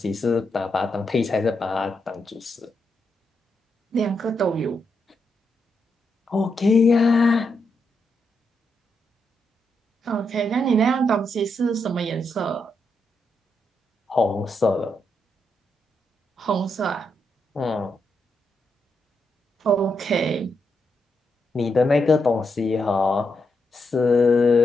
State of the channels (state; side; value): normal; both; correlation 0.82